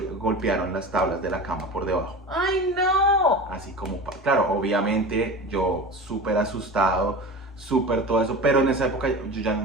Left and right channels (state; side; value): normal; both; correlation 0.32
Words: las tablas de la cama por debajo. ¡Ay, no! Así como, claro, obviamente yo súper asustado, súper todo eso, pero en esa época